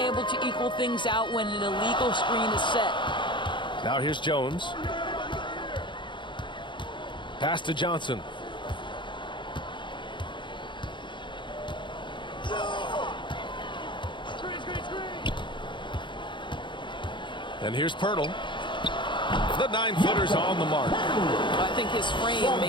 to equal things out when an illegal screen is set. Now here's Jones. Pass to Johnson. And here's Pirtle. The 9-footer's on the mark. I think his frame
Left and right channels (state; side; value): late; right; 0.23 ms